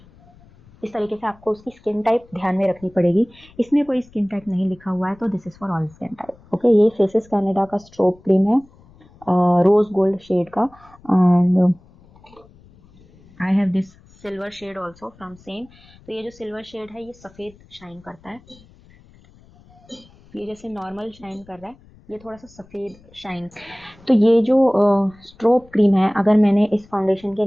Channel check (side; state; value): left; noise; rumble, 26 dB below the sound